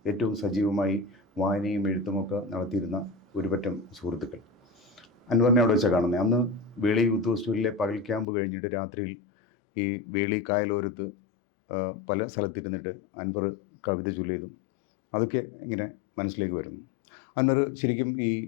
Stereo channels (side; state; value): right; drops out; at 8.2 s